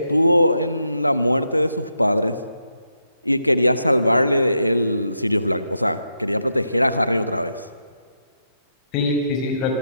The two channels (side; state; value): both; inverted; correlation -0.82